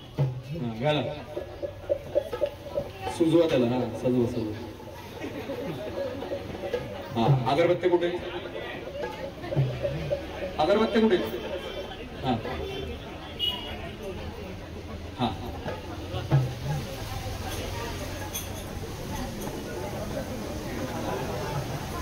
हा घाला, सुजवा त्याला. हा सजवा सजवा. हा अगरबत्ती कुठे, अगरबत्ती कुठे. हा हा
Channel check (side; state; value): both; identical; correlation 1.00